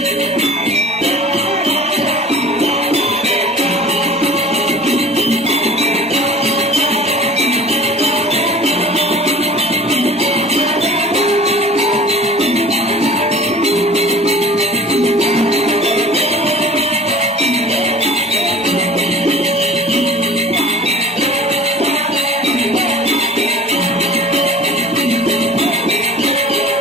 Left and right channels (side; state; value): both; normal; correlation 0.43